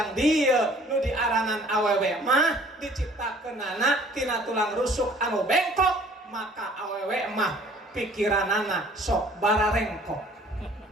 dieu nu diaranan awewe mah diciptakeunana tina tulang rusuk anu bengkok, maka awewe mah pikiranana sok bararengkok.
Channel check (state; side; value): normal; both; correlation 0.54